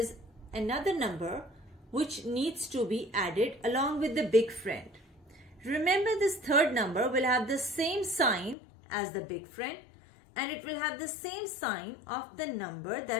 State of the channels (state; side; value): drops out; right; at 8.6 s